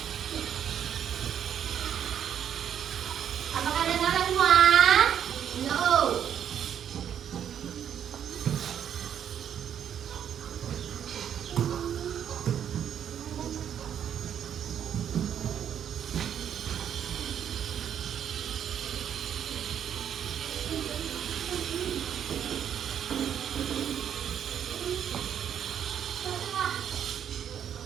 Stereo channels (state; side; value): quieter; left; 9.1 dB